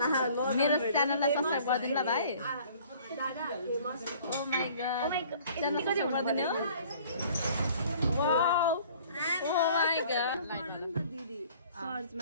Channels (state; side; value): inverted; both; correlation -0.52